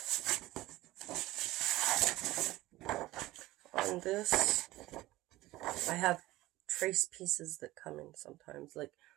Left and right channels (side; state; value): left; quieter; 17.7 dB